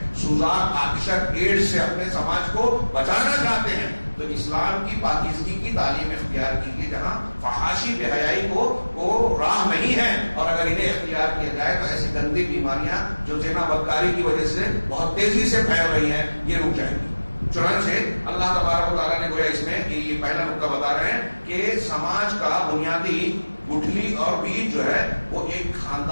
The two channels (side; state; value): both; inverted; correlation -1.00